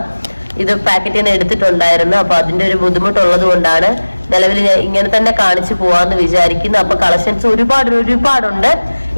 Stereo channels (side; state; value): both; inverted; correlation -1.00